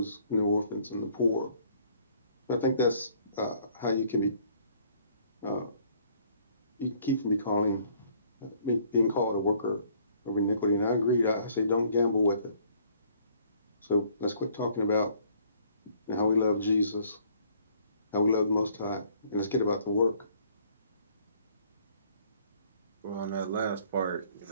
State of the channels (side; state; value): both; inverted; correlation -0.61